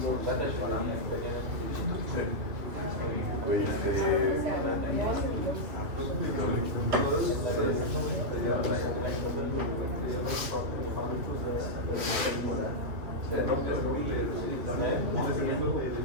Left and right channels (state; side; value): late; left; 2.8 ms